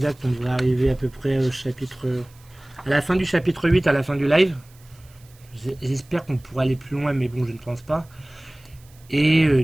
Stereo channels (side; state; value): right; noise; hiss, 28 dB below the sound